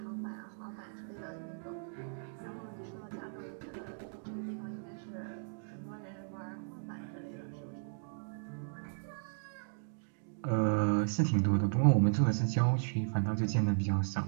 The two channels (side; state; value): left; silent; digital silence